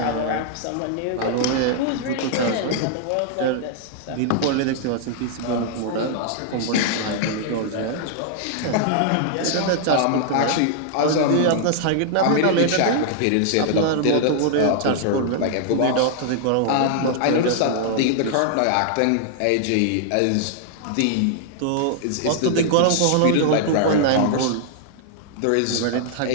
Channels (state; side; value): different; both; correlation -0.01